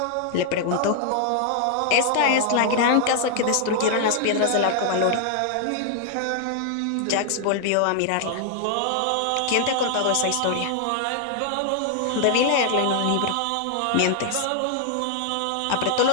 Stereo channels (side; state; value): both; different; correlation 0.00